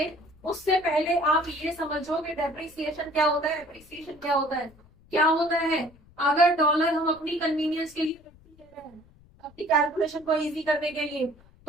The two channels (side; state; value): left; noise; rumble, 27 dB below the sound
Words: उससे पहले आप ये समझो कि डेप्रिसिएशन क्या होता है, एप्रिसिएशन क्या होता है। क्या होता है, अगर डॉलर हम अपनी कन्वीनियंस के लिए ले रहे हैं, अपनी कैलकुलेशन को इजी करने के लिए,